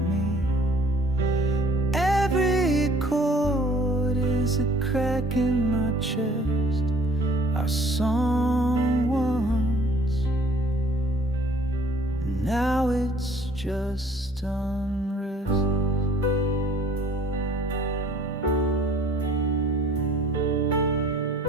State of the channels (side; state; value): both; normal; correlation 0.55